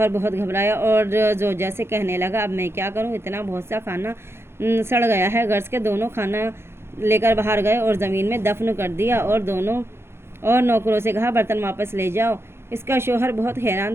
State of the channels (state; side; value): late; left; 0.12 ms